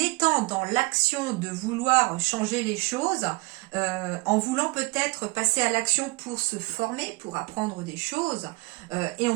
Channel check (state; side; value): quieter; left; 25.8 dB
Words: dans l'action de vouloir changer les choses, en voulant peut-être passer à l'action pour se former, pour apprendre des choses, et on